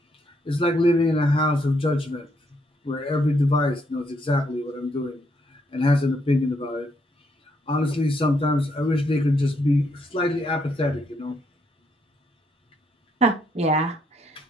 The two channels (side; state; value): both; normal; correlation 0.74